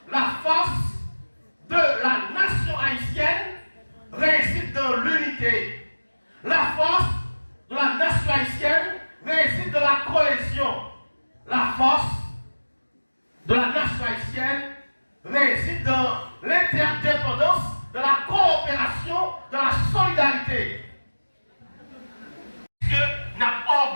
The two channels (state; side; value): inverted; both; correlation -1.00